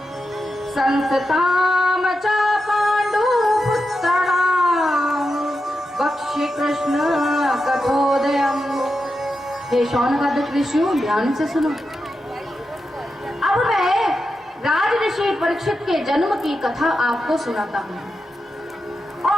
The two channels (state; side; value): normal; both; correlation 0.88